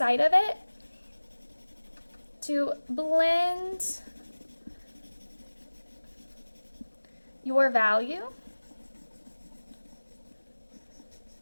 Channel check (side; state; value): both; inverted; correlation -1.00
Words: of it to blend your value